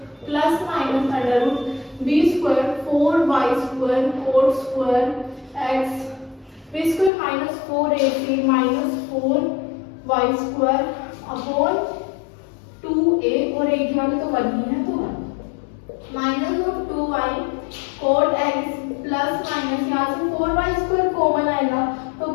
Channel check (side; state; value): right; drops out; at 7.1 s